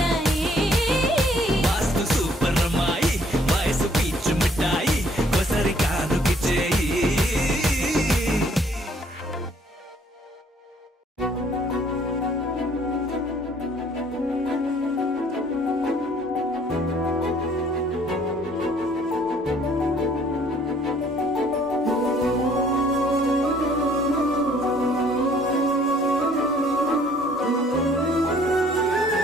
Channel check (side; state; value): both; normal; correlation 0.61